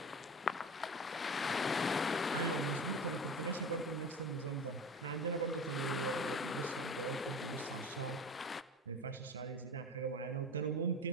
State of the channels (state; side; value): normal; both; correlation 0.32